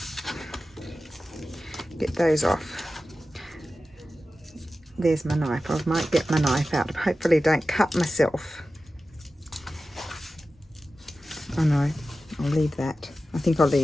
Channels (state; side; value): normal; both; correlation 0.94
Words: Get those off. There's my knife. I might get my knife out. Hopefully don't cut myself. Oh no. I'll leave that. I think I'll